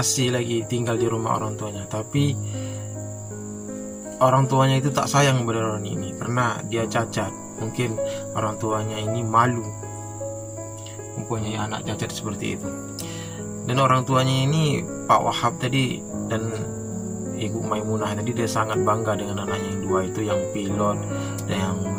lagi tinggal di rumah orang tuanya, tapi orang tuanya itu tak sayang kepada Roni ini karena dia cacat. Mungkin orang tuanya ini malu mempunyai anak cacat seperti itu. Dan orang tuanya ini Pak Wahab tadi dan Ibu Maimunah tadi, dia sangat bangga dengan anaknya yang dua itu, yang pilot dan yang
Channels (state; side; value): identical; both; correlation 1.00